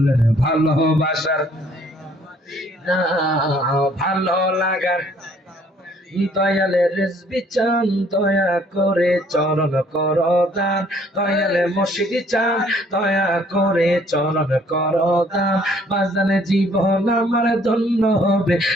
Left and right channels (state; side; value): normal; both; correlation 0.61